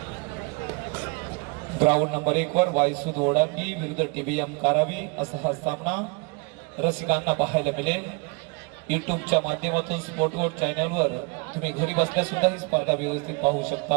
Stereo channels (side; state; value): left; quieter; 29.2 dB